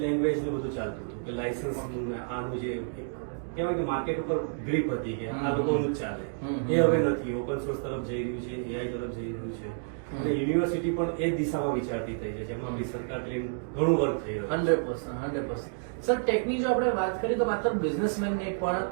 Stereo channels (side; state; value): left; silent; digital silence